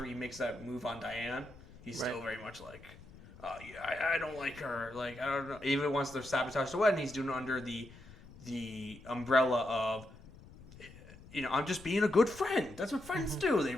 he makes that move on Diane. He's still very much like, I don't like her. Like, I don't know. Even once they're sabotaged the wedding, he's doing it under the umbrella of, I'm just being a good friend. That's what friends do. They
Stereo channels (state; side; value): noise; left; rumble, 19 dB below the sound